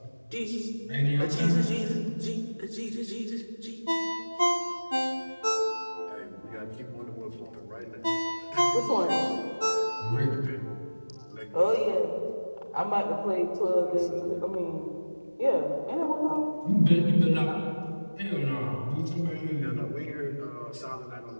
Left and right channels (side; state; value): both; inverted; correlation -1.00